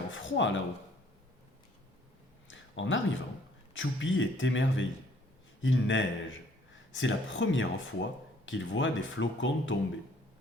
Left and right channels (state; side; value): normal; both; correlation 0.61